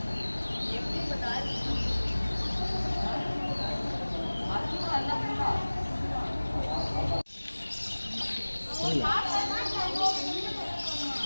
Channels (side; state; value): both; inverted; correlation -1.00